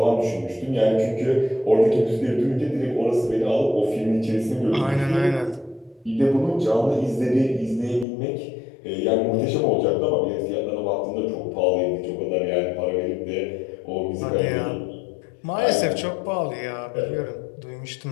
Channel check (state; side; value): drops out; right; at 8.1 s